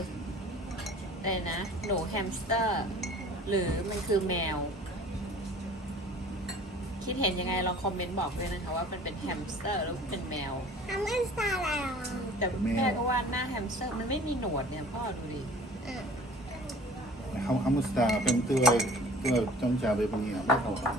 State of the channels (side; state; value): both; normal; correlation 0.47